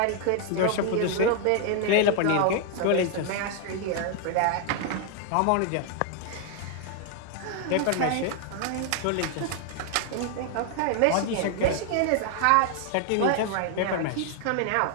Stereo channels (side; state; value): both; different; correlation 0.00